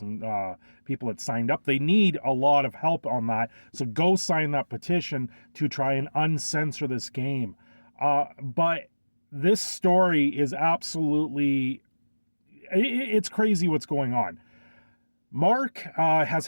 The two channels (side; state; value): both; inverted; correlation -1.00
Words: people that signed up. They need a lot of help on that. So go sign that petition to try and uncensor this game. But this story is absolutely... It's crazy what's going on. Mark has